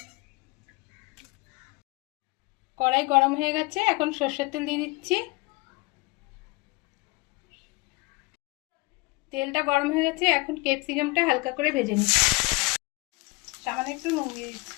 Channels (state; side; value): quieter; right; 25.3 dB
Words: কড়াই গরম হয়ে গেছে, এখন সরষের তেল দিয়ে দিচ্ছি। তেলটা গরম হয়ে গেছে, এখন ক্যাপসিকামটা হালকা করে ভেজে নিচ্ছি। সামান্য একটু নুন দিয়ে